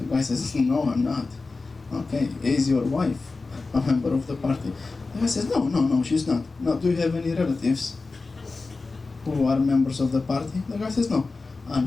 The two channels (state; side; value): quieter; right; 3.8 dB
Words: guy says, no, I'm not. Okay, is your wife a member of the party? The guy says, no, she's not. No, do you have any relatives who are members of the party? The guy says, no.